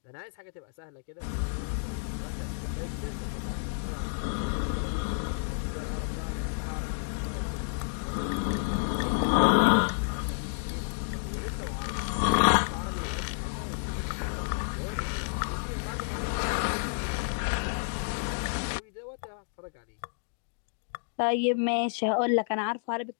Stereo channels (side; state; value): right; silent; digital silence